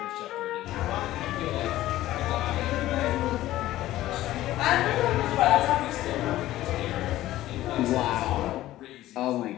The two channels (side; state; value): right; quieter; 15.1 dB